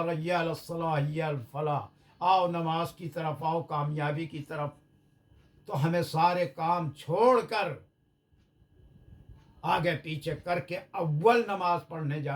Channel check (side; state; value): both; identical; correlation 1.00